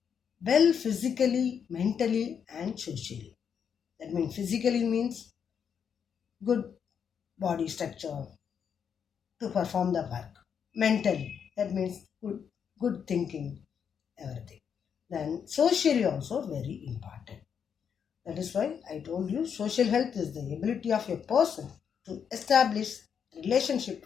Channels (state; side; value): quieter; right; 7.4 dB